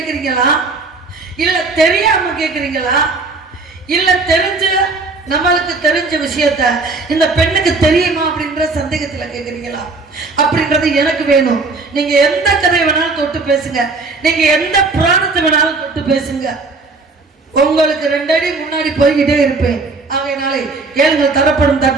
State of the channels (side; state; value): left; quieter; 3.7 dB